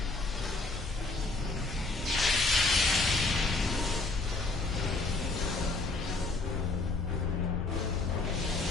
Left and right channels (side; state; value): right; quieter; 3.4 dB